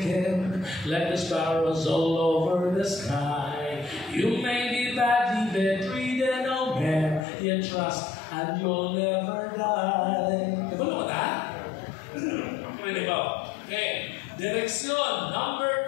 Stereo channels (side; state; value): right; drops out; at 7.2 s